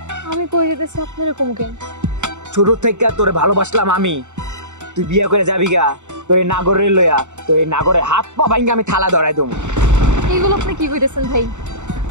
আমি কই যেতেছি আপনার এরকম কেন? ছোট থেকে তোরে ভালোবাসলাম আমি, তুই বিয়ে করে যাবি গা, তোর এই নাগরের লইয়া, তোর এই নাগরের হাত পা ভাঙ্গা আমি থালা ধরাই দেবো। এইগুলো আপনি কি কইতেছেন ভাই?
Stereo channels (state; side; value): late; left; 0.84 ms